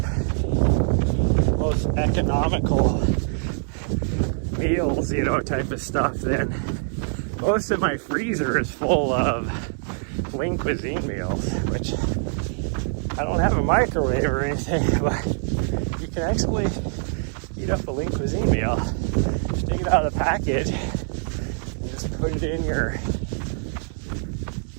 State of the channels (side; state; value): left; silent; digital silence